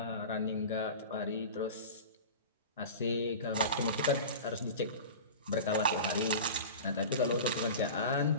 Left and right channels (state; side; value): inverted; both; correlation -0.33